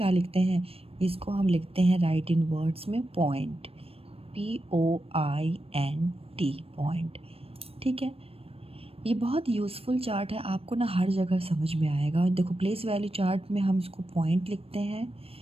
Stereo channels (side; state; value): left; late; 0.28 ms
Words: लिखते हैं? इसको हम लिखते हैं राइट इन वर्ड्स में पॉइंट, POINT, पॉइंट। ठीक है, ये बहुत यूज़फुल चार्ट है, आपको ना हर जगह समझ में आएगा। देखो, प्लेस वैल्यू चार्ट में हम इसको पॉइंट लिखते हैं